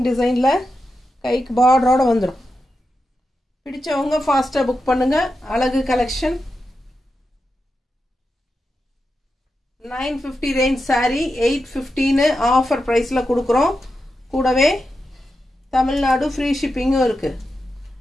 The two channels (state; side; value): normal; both; correlation 0.89